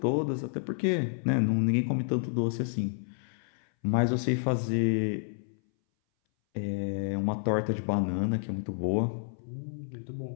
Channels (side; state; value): right; silent; 58 dB below the other